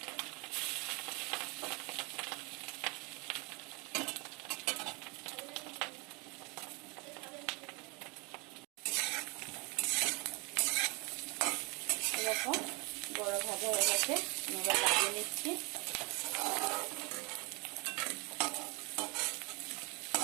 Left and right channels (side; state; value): left; quieter; 29.7 dB